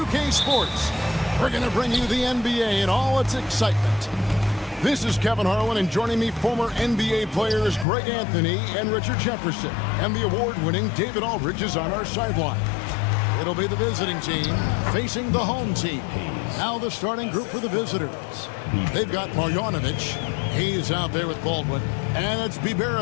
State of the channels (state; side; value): drops out; right; at 7.9 s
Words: Sports, we're going to bring you the NBA and all its excitement. This is Kevin Harlan, and joining me, former NBA players Greg Anthony and Richard Jefferson, and the award-winning David Aldridge is on our sideline. It'll be the visiting team facing the home team. Now the starting group for the visitors. They've got Marjanovic. He's out there with Baldwin. And it's